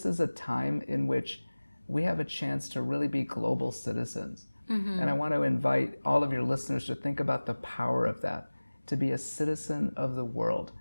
is a time in which we have a chance to really be global citizens. And I want to invite all of your listeners to think about the power of that, to be a citizen of the world.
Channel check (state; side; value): inverted; both; correlation -1.00